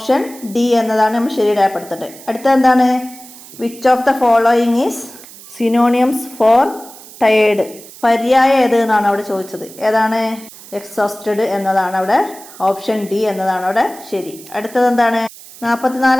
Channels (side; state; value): right; noise; hiss, 19 dB below the sound